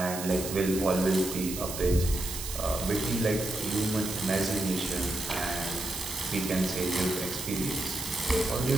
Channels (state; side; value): noise; right; hiss, 7 dB below the sound